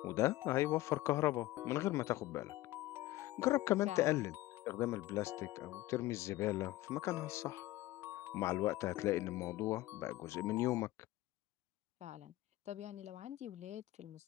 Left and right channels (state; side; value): quieter; right; 17.0 dB